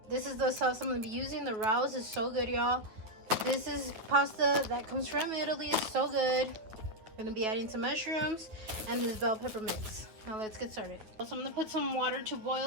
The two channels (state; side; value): late; left; 9.5 ms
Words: This is the sauce I'm going to be using. The Rouse is so good, y'all. This is pasta that comes from Italy. It's so good. I'm going to be adding some mushrooms and this bell pepper mix. Now let's get started. So I'm going to put some water to